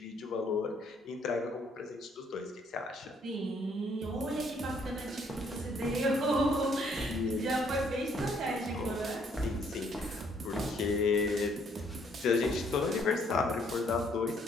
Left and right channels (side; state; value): both; normal; correlation 0.66